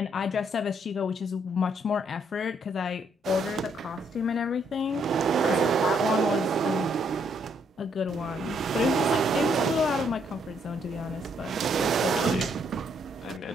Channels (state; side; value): normal; both; correlation 0.71